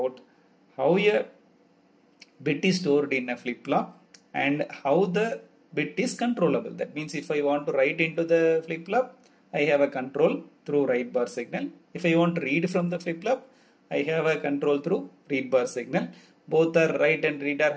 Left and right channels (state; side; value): identical; both; correlation 1.00